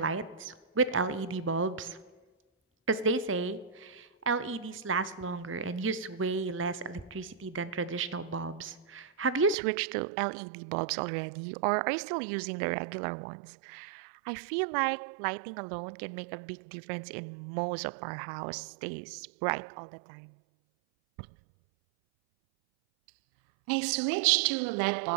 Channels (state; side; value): drops out; left; at 9.6 s